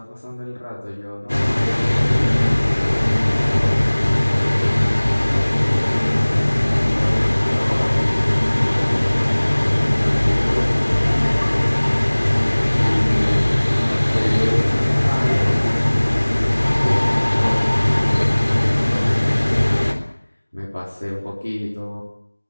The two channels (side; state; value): both; inverted; correlation -1.00